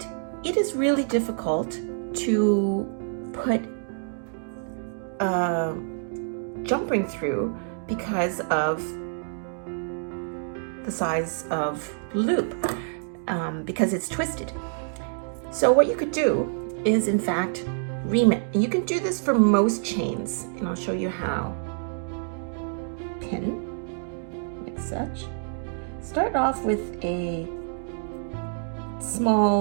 it is really difficult to put a jump ring through because of the size of the loop, because it's twisted. So what you could do is, in fact, ream it. And you can do this for most chains, and I'll show you how. Pin, like such. Start off with a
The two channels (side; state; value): left; silent; digital silence